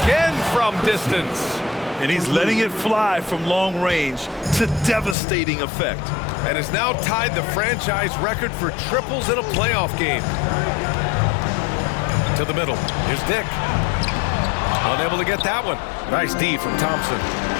from distance. And he's letting it fly from long range to devastating effect. And has now tied the franchise record for triples in a playoff game. To the middle. Here's Dick. Unable to get that one. Nice D from Thompson.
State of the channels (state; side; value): drops out; right; at 5.2 s